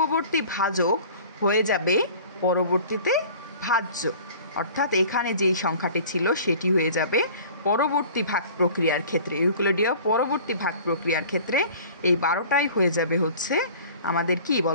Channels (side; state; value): both; inverted; correlation -0.46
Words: ভাজক হয়ে যাবে পরবর্তীতে ভাজ্য। অর্থাৎ এখানে যেই সংখ্যাটি ছিল সেটি হয়ে যাবে পরবর্তী ভাগ প্রক্রিয়ার ক্ষেত্রে, ইউক্লিডীয় পরবর্তী ভাগ প্রক্রিয়ার ক্ষেত্রে এই 12টাই হয়ে যাবে আমাদের কি